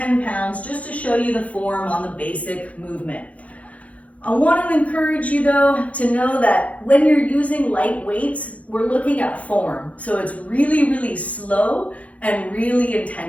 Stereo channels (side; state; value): right; late; 0.067 ms